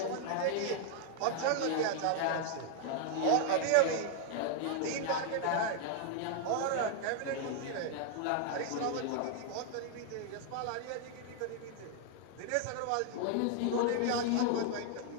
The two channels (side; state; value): both; different; correlation 0.00